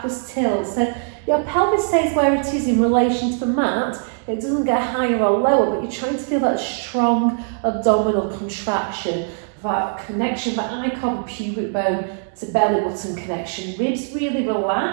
tilt. So your pelvis stays where it is in relation to the mat. It doesn't get higher or lower, but you're trying to feel that strong abdominal contraction, that connection that I call the pubic bone to belly button connection. Ribs really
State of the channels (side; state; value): left; silent; 65 dB below the other